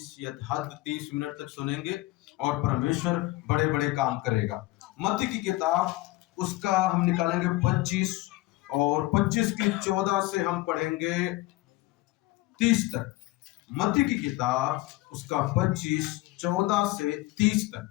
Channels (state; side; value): quieter; right; 19.2 dB